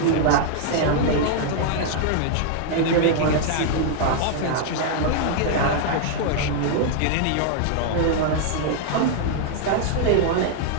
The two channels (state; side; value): different; both; correlation -0.01